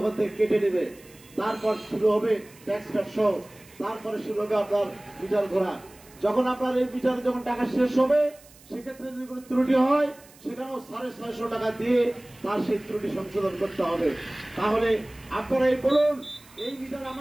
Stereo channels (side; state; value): right; noise; hiss, 24 dB below the sound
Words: ওখান থেকে কেটে নেবে। তারপর শুরু হবে ট্যাক্স কাট সহ, তারপরে শুরু হবে আপনার মিটার ঘোরা। যখন আপনার এই মিটারে যখন টাকা শেষ হবে সেক্ষেত্রে যদি কোনো ত্রুটি হয় সেখানেও 650 টাকা দিয়ে তার সেই ত্রুটি সংশোধন করতে হবে। তাহলে আপনারা এই বলুন, এই মিটার